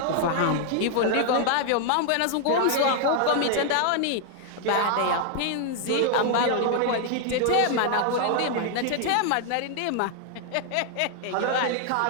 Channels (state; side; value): different; both; correlation 0.00